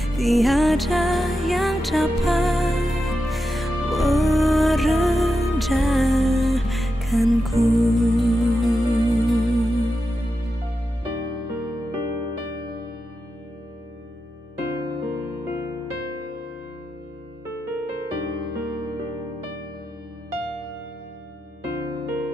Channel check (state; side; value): normal; both; correlation 0.89